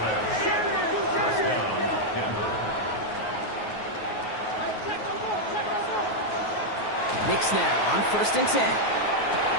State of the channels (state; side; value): late; right; 9.4 ms